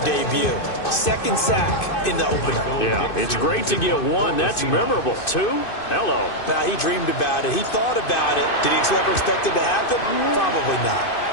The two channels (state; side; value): late; right; 2.5 ms